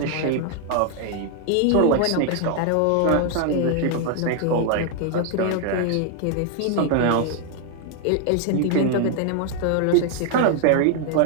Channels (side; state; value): both; different; correlation 0.00